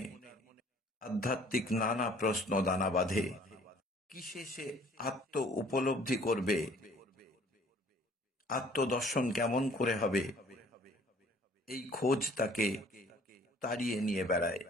আধ্যাত্মিক নানা প্রশ্ন দানা বাঁধে। কিসে সে আত্ম উপলব্ধি করবে, আত্মদর্শন কেমন করে হবে, এই খোঁজ তাকে তাড়িয়ে নিয়ে বেড়ায়।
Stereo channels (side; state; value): both; normal; correlation 0.56